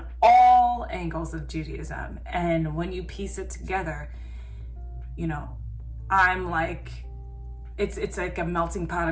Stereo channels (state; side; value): identical; both; correlation 1.00